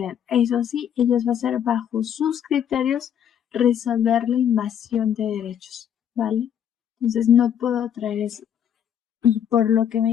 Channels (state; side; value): quieter; right; 9.1 dB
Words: Eso sí, ellos va a ser bajo sus criterios resolver la invasión de derechos, ¿vale? Entonces no puedo traer eso. Y por lo que